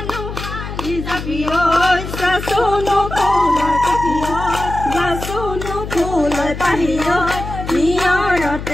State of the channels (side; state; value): left; noise; hum, 8 dB below the sound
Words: zabi oi sasuno bola katio Sasuno pulai pahiyot